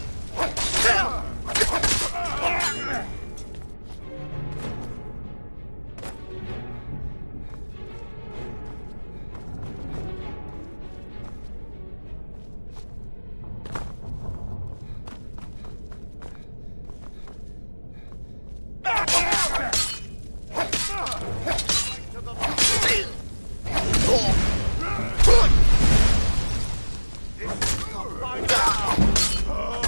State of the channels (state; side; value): inverted; both; correlation -1.00